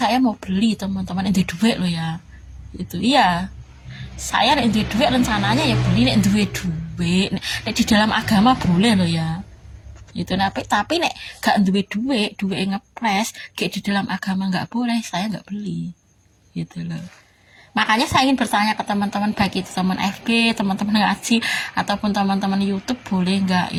mau beli teman-teman, nek duit lo ya itu. Iya, saya nek duit rencananya ya beli nek duit nek di dalam agama boleh lo ya itu. Tapi nek gak duit ngepres kayak di dalam agama nggak boleh, saya nggak beli gitu loh. Makanya saya ingin bertanya ke teman-teman, baik itu teman FB, teman-teman ngaji, ataupun teman-teman YouTube, boleh nggak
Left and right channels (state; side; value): identical; both; correlation 1.00